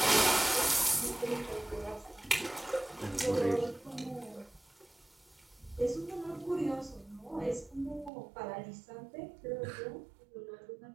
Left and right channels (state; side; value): drops out; left; at 8.1 s